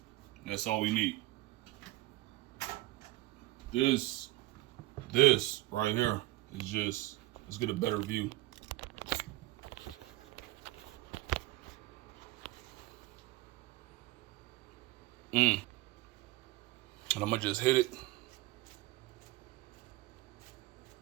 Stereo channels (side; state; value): left; quieter; 18.7 dB